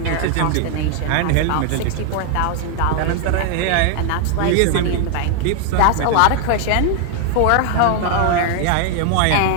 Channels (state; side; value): different; both; correlation 0.00